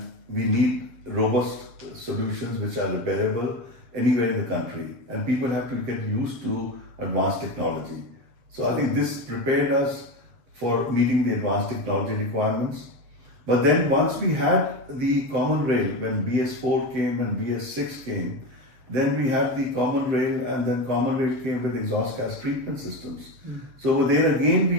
we need robust solutions which are repairable anywhere in the country. And people have to get used to advanced technology. So I think this prepared us for meeting the advanced technology requirements. But then once we had the common rail, when BS4 came and BS6 came, then we had the common rail, and then common rail came with exhaust gas treatment systems. So there again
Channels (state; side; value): late; left; 7.6 ms